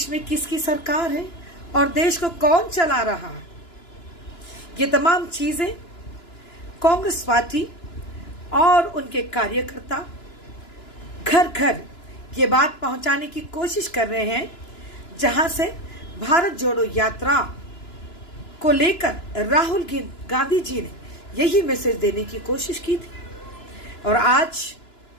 में किसकी सरकार है और देश को कौन चला रहा है। ये तमाम चीजें कांग्रेस पार्टी और उनके कार्यकर्ता घर घर ये बात पहुंचाने की कोशिश कर रहे हैं, जहां से भारत जोड़ो यात्रा को लेकर राहुल गांधी जी ने यही मैसेज देने की कोशिश की थी। और आज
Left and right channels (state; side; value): late; right; 2.9 ms